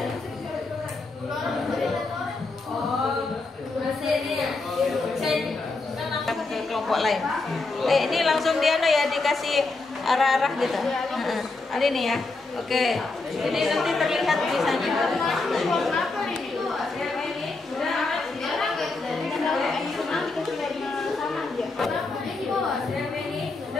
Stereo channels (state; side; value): quieter; right; 3.5 dB